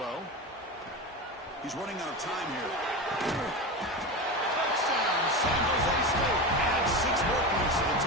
He's running out of time here. Touchdown, San Jose State. Adds 6 more points to the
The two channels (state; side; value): normal; both; correlation 0.23